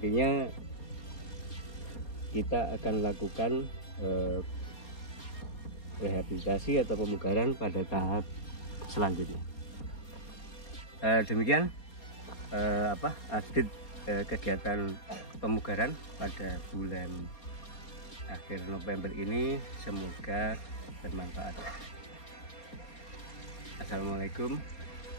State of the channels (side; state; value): right; late; 4.3 ms